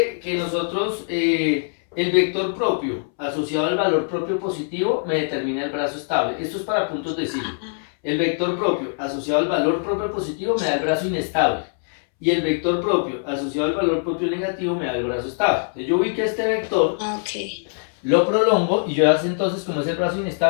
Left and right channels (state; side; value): silent; right; 64 dB below the other